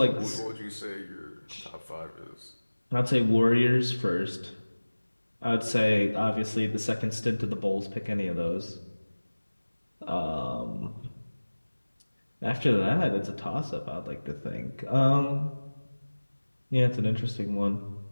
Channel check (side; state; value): both; inverted; correlation -1.00